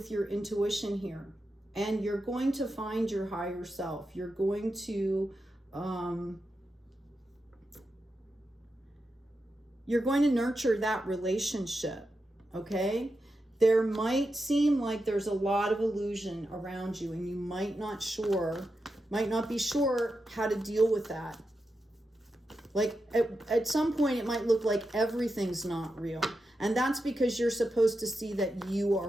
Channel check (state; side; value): normal; both; correlation 0.88